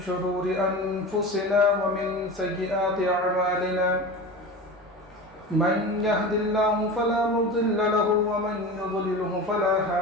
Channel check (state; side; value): normal; both; correlation 0.30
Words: شرور أنفسنا ومن سيئات أعمالنا من يهد الله فلا مضل له ومن يضلله فلا